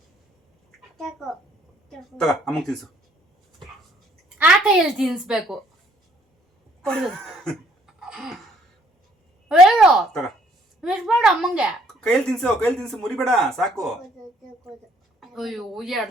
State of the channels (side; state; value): both; normal; correlation 0.64